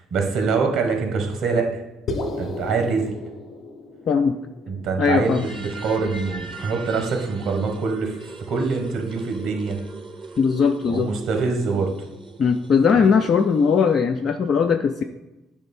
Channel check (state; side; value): normal; both; correlation 0.67